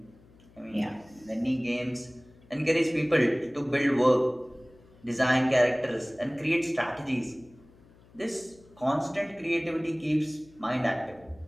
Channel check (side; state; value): left; noise; hum, 26 dB below the sound